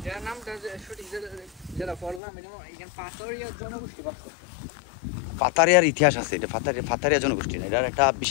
পাতারিয়ার ইতিহাস আছে, এটা পাতারিয়া জনগোষ্ঠী না, এটার একটা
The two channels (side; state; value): right; drops out; at 2.2 s